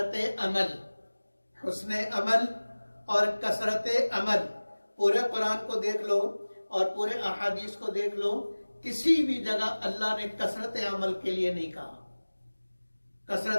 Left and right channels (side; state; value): both; inverted; correlation -1.00